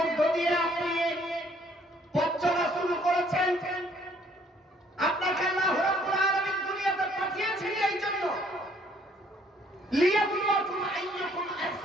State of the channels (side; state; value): both; normal; correlation 0.63